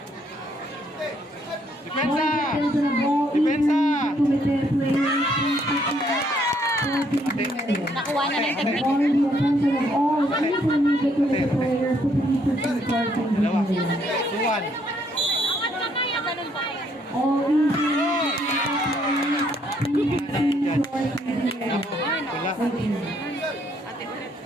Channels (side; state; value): both; normal; correlation 0.69